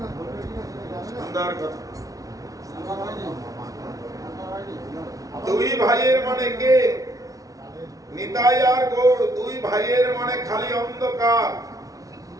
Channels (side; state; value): left; late; 0.17 ms